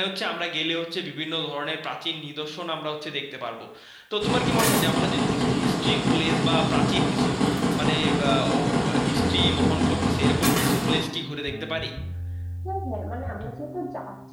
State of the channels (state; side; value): identical; both; correlation 1.00